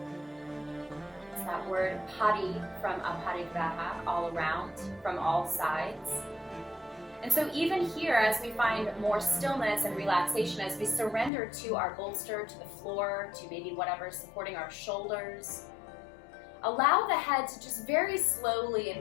It's that word pari from aparigraha, all around, from all sides. And so even here, as we find more stillness and relaxation, as we surrender to our bolster, to the floor, to maybe whatever's supporting our shoulders, allow the head to just very slowly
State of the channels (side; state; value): right; drops out; at 11.3 s